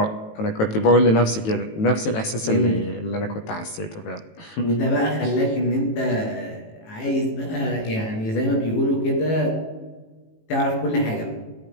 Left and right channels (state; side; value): late; right; 18 ms